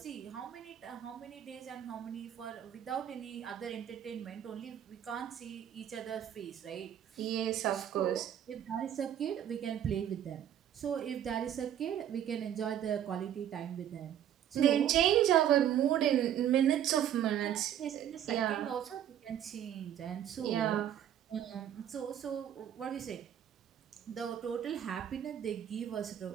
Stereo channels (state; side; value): quieter; left; 10.3 dB